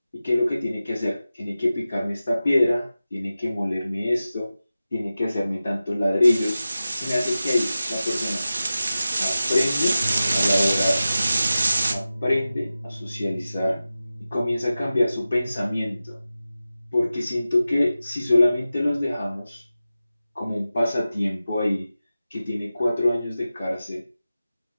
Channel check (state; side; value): inverted; both; correlation -0.94